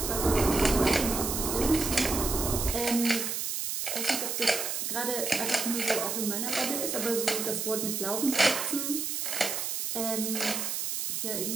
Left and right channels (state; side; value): noise; right; hiss, 2 dB below the sound